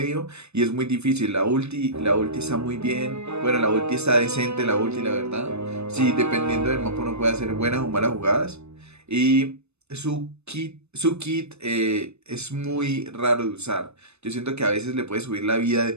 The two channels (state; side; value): late; left; 0.81 ms